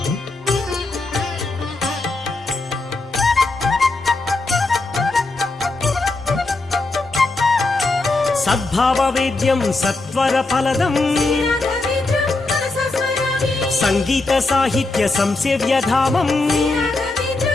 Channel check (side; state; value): right; quieter; 3.2 dB